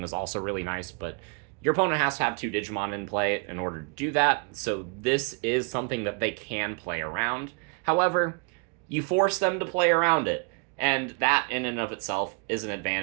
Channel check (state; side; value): quieter; left; 34.0 dB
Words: is also really nice, but your opponent has to have 2 Digimon in play in order to do that, so this is something that they can play around. However, you force them to play around it, and that in and of itself is an